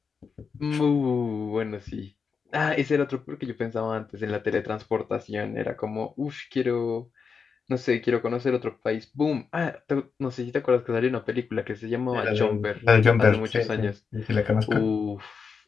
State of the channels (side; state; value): right; quieter; 5.6 dB